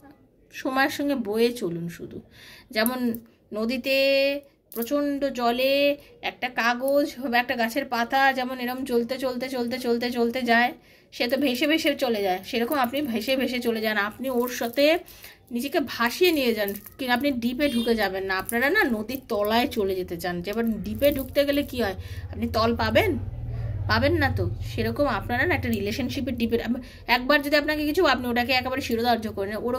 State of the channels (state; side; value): identical; both; correlation 1.00